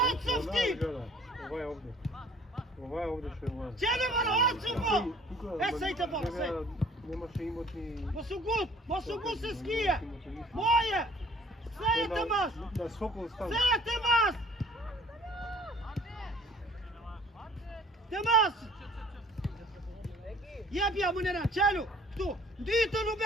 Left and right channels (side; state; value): both; normal; correlation 0.53